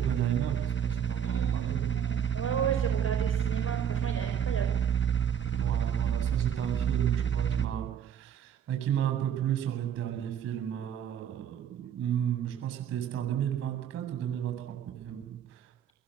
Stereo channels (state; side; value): quieter; left; 8.8 dB